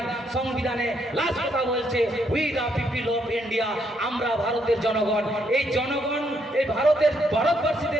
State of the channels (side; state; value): both; normal; correlation 0.74